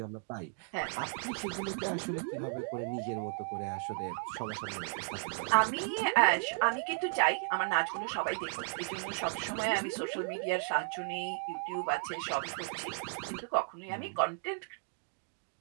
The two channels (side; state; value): left; quieter; 37.5 dB